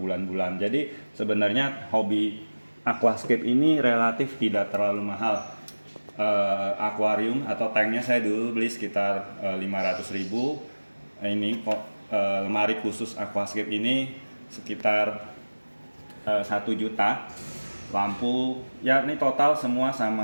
Jadi sebenarnya hobi aquascape ini relatif tidak terlalu mahal. Akuarium atau tanknya saya dulu beli sekitar 500.000. Ini kok lemari khusus aquascape ini sekitar 1 juta. lampu, ya ini total semua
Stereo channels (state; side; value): inverted; both; correlation -1.00